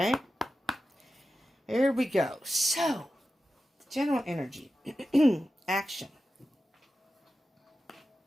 Here we go. So, the general energy. Action.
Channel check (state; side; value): normal; both; correlation 0.92